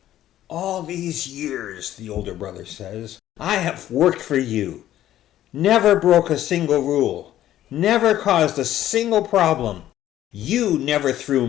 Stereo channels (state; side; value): quieter; right; 12.8 dB